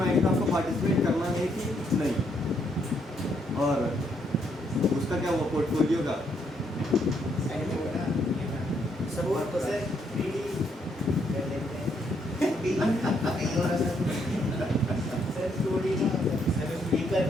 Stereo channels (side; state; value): both; normal; correlation 0.73